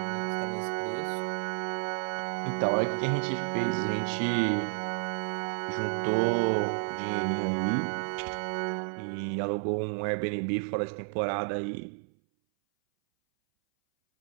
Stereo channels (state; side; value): silent; left; 57 dB below the other